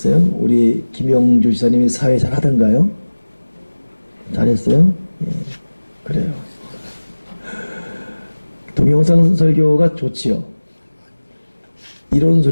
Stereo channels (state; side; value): inverted; both; correlation -1.00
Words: 우리 김영주 지사님이 사회 잘 하던가요? 잘했어요? 예, 그래요. 동영상 설교가 좋지요. 이런